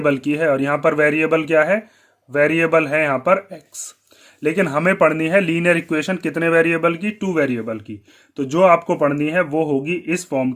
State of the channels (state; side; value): identical; both; correlation 1.00